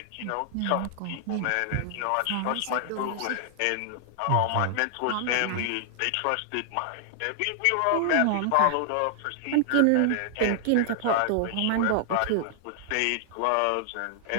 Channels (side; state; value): both; different; correlation -0.01